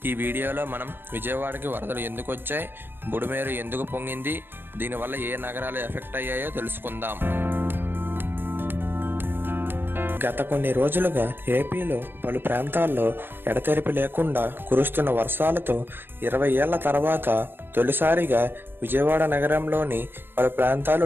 ఈ వీడియోలో మనం విజయవాడకి వరదలు ఎందుకు వచ్చాయి, బుడమేరు ఎందుకు పొంగింది, దీనివల్ల ఏ నగరాలు ఎఫెక్ట్ అయ్యాయో తెలుసుకుందాం. గత కొన్ని రోజులుగా ఏపీలో పలు ప్రాంతాల్లో ఎడతెరిపి లేకుండా కురుస్తున్న వర్షాలతో 20 ఏళ్ల తర్వాత తొలిసారిగా విజయవాడ నగరంలోని పలు ప్రాంతాలు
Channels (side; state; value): left; late; 0.10 ms